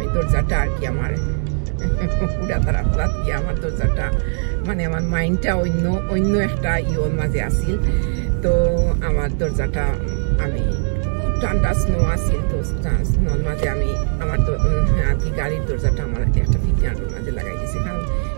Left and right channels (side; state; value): left; silent; digital silence